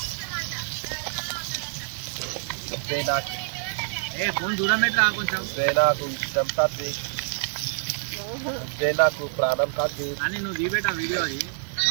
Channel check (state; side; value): silent; left; 61 dB below the other